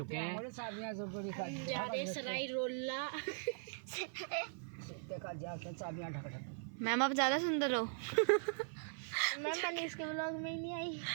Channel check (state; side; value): silent; left; 51 dB below the other